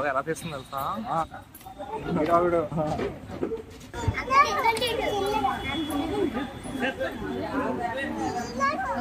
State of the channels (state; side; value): identical; both; correlation 1.00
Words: ఎలా తీస్తుంది తెలుసా?